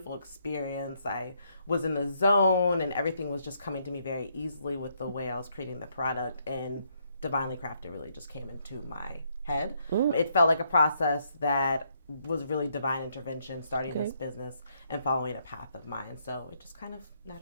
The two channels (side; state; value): both; inverted; correlation -0.73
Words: experience. I was in the zone and everything was just coming to me very easily with the way I was creating the product. And Divinely Crafted really just came into my head. It felt like a process that was really divine intervention, starting this business and following a path of mine. So it just kind of